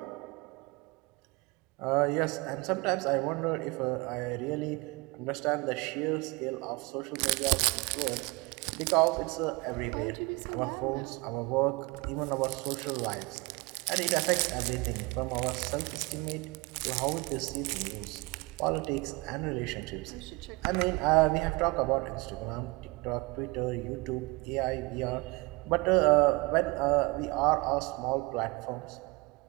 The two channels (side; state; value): left; quieter; 25.7 dB